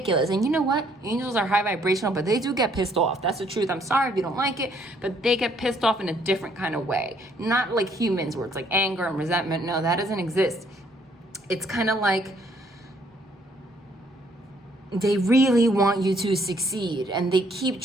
And you know what? Angels are high vibrational, but they do get pissed off. That's the truth. I'm sorry if you don't like it, but they get pissed off in a different kind of way. Not like humans where it's like anger and resentment. No, that doesn't exist. It's kind of like they really want you to succeed and they keep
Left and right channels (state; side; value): normal; both; correlation 0.66